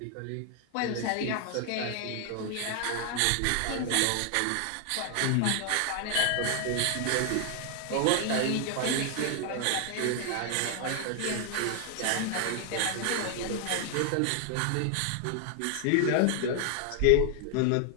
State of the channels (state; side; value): different; both; correlation 0.00